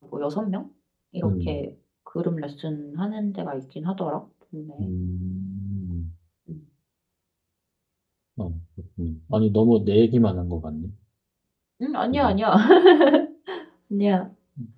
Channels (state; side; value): identical; both; correlation 1.00